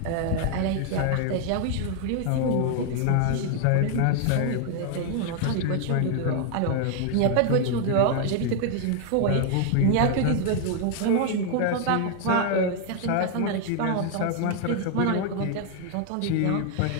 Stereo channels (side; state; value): both; different; correlation 0.00